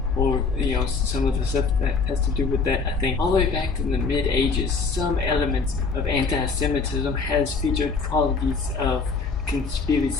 or some of the stuff that has to do with that. I think all the way back in the mid-ages, some elements of anti-Semitism has featured qualities of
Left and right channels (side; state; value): right; quieter; 4.6 dB